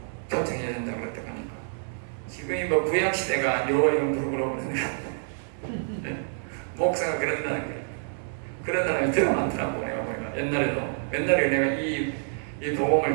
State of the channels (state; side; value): silent; left; 60 dB below the other